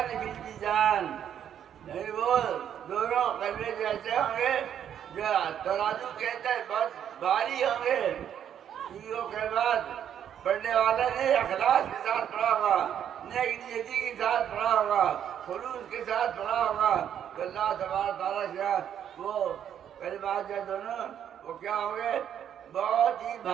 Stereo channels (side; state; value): left; quieter; 9.4 dB